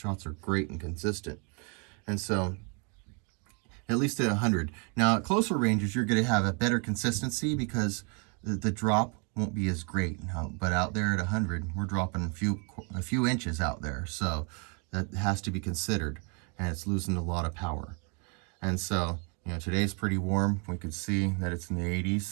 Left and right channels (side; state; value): left; quieter; 35.1 dB